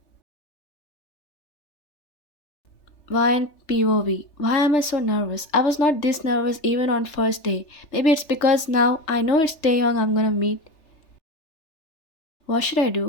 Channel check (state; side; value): late; right; 3.4 ms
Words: Vine POV. Why am I so nervous? I was not this nervous even on first day. Maybe it's because now I know it's Taehyung I'm gonna meet. What should I